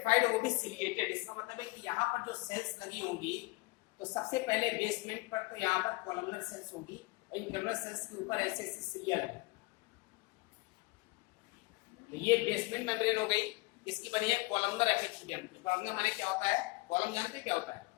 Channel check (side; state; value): right; quieter; 24.2 dB